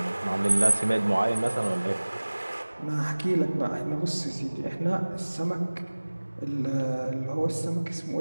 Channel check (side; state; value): both; inverted; correlation -1.00